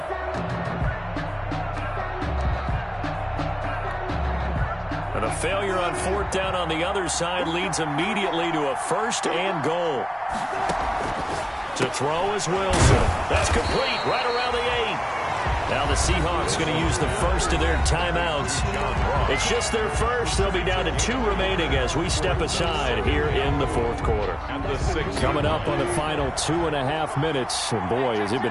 And a failure on 4th down on the other side leads immediately to a 1st and goal. To throw is Wilson. That's complete right around the 8. Now the Seahawks going to use the first of their timeouts. It's just their first. They'll be down to 2 remaining as we step aside here in the 4th quarter. Coming up on the final 2.5 minutes. And boy, has it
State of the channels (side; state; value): both; identical; correlation 1.00